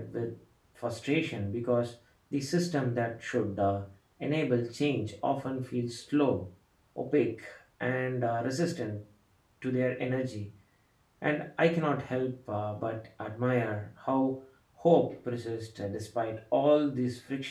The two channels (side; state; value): both; identical; correlation 1.00